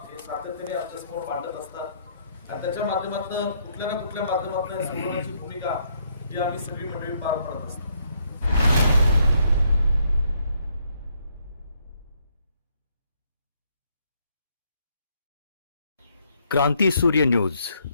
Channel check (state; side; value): inverted; both; correlation -0.71